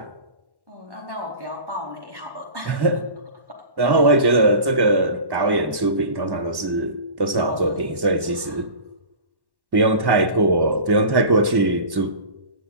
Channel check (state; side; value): late; left; 1.1 ms